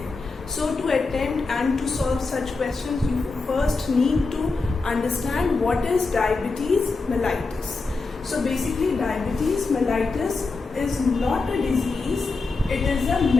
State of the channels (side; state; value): right; quieter; 3.9 dB